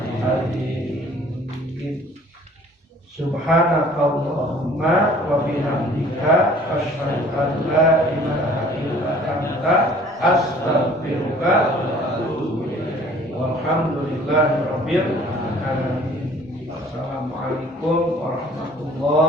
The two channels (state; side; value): normal; both; correlation 0.53